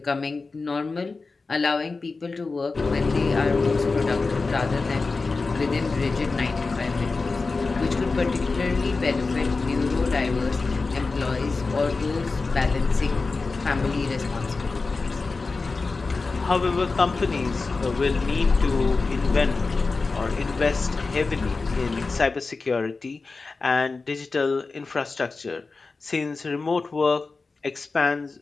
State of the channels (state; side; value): quieter; right; 4.0 dB